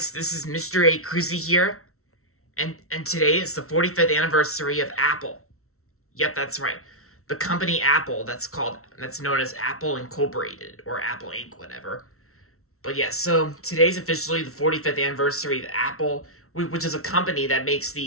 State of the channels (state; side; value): late; right; 0.63 ms